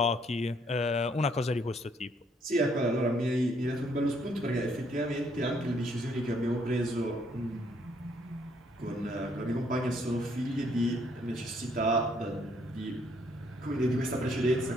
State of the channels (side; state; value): both; normal; correlation 0.68